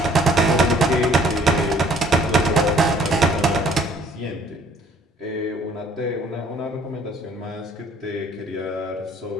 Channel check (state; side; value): normal; both; correlation 0.58